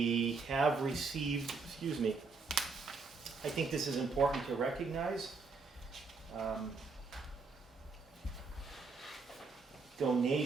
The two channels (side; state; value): left; quieter; 4.4 dB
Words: have received, I think this is important to recognize.